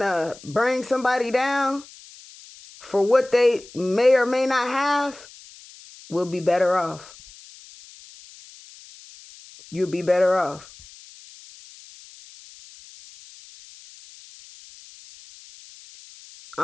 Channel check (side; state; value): left; noise; hiss, 21 dB below the sound